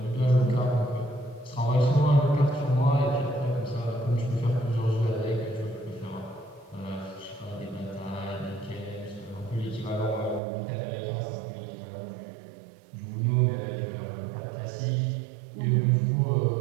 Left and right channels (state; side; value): drops out; left; at 10.4 s